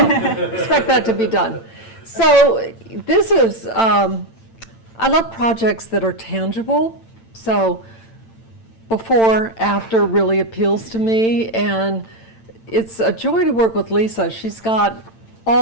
expect that to be done. So this is, I love projects that are tangible. So before, after really appeals to me, and it's a joy to work with Lisa. She's got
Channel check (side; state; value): right; late; 8.9 ms